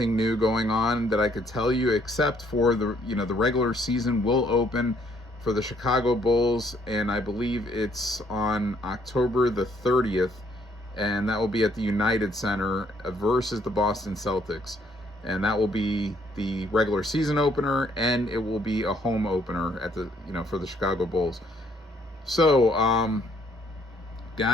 new going on that I could tell you except for the regular season will open for the Chicago Bulls, and I believe it's on October the 30th, and that will be at the United Center versus the Boston Celtics. And that will be the regular season opener, and it will be a home opener at the for the Chicago Bulls. So,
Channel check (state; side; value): normal; both; correlation 0.67